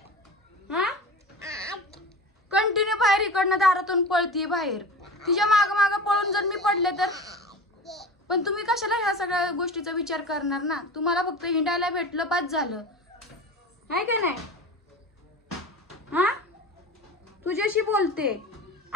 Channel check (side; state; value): both; normal; correlation 0.33